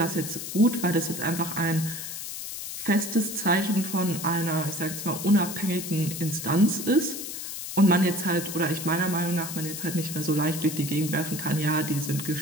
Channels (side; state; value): left; noise; hiss, 7 dB below the sound